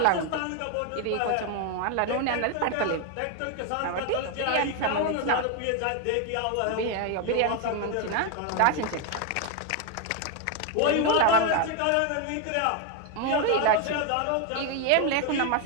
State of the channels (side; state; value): both; different; correlation 0.01